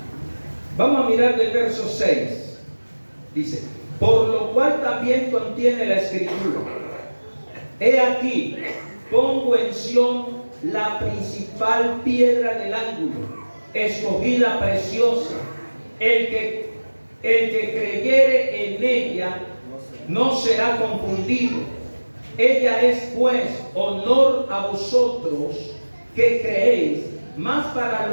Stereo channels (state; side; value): inverted; both; correlation -1.00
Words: vamos a mirar del verso 6, dice, por lo cual también contiene la escritura, he aquí, pongo en Sión la principal piedra del ángulo, escogida preciosa, el que creyere en ella no será confundido. Ella es pues honor a vosotros que creéis, mas para